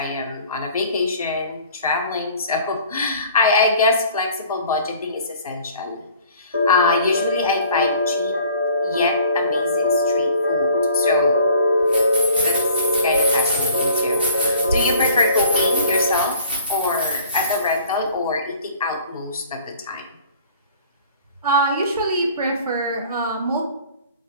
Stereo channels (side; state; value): both; inverted; correlation -0.53